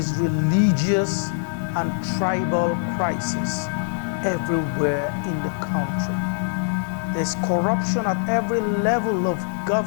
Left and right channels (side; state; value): right; silent; digital silence